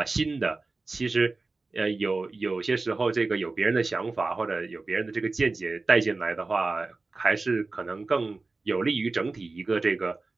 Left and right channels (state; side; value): quieter; left; 3.6 dB